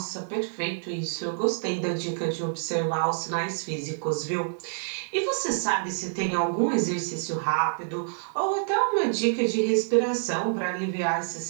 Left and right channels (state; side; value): silent; left; digital silence